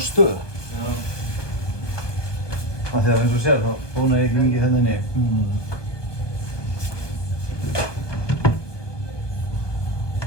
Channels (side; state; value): right; late; 1.2 ms